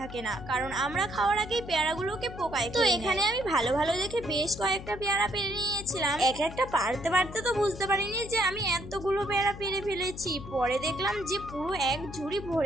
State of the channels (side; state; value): left; noise; hum, 13 dB below the sound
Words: না, কারণ আমরা খাওয়ার আগেই পেয়ারাগুলোকে পোকায়। তো এখানে আমি ভালো ভালো দেখে বেশ কয়েকটা পেয়ারা পেরে নিয়েছিলাম। এক একটা পারতে পারতে তো বুঝতে পারিনি যে আমি এতগুলো পেয়ারা পেরে ফেলেছি। পরে দেখলাম যে পুরো এক ঝুড়ি